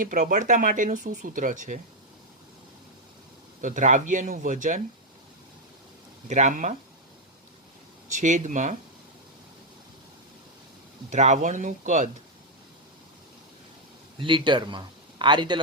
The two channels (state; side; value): normal; both; correlation 0.00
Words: પ્રબળતા માટેનું શું સૂત્ર છે? તો દ્રાવ્યનું વજન ગ્રામમાં છેદમાં દ્રાવણનું કદ લીટરમાં. આ રીતે